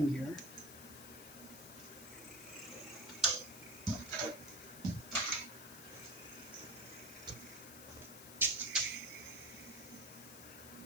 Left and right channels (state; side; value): noise; left; hiss, 12 dB below the sound